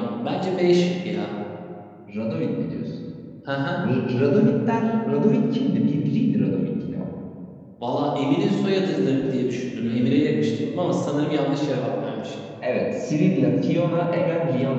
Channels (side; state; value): both; identical; correlation 1.00